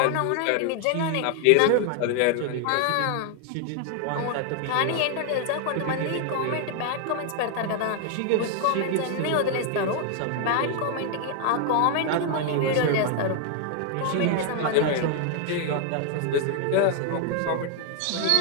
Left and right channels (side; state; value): both; different; correlation 0.00